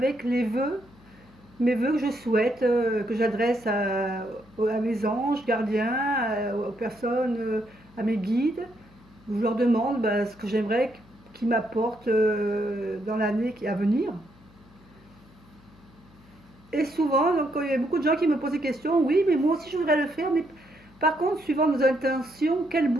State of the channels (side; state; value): left; noise; hum, 26 dB below the sound